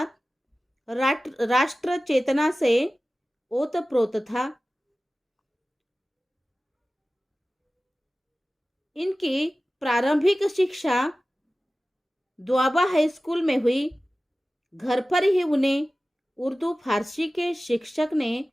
राष्ट्र चेतना से ओतप्रोत था। इनकी प्रारंभिक शिक्षा द्वाबा हाई स्कूल में हुई। घर पर ही उन्हें उर्दू फारसी के शिक्षक ने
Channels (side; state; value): both; normal; correlation 0.96